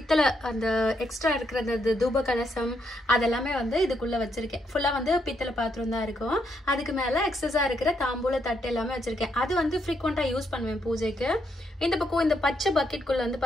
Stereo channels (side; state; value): both; normal; correlation 0.77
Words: அந்த எக்ஸ்ட்ரா இருக்கிற அந்த தூப கலசம் அதெல்லாமே வந்து இதுக்குள்ள வச்சிருக்கேன். ஃபுல்லா வந்து பித்தளை பாத்திரம் தான் இருக்கும். அதுக்கு மேல எக்ஸஸா இருக்கிற தாம்பூல தட்டு எல்லாமே வச்சிருக்கேன். அது வந்து ஃப்ரீக்வெண்டா யூஸ் பண்ணுவேன் பூஜைக்கு. இந்த பக்கம் இந்த பச்சை பக்கெட்குள்ள வந்து